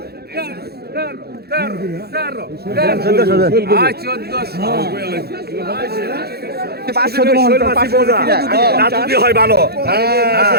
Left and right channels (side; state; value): left; late; 0.46 ms